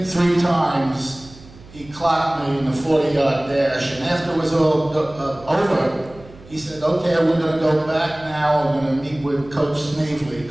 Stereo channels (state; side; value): noise; right; hum, 21 dB below the sound